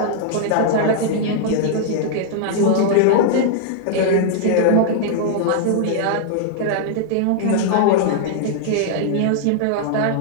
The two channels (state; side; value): different; both; correlation -0.01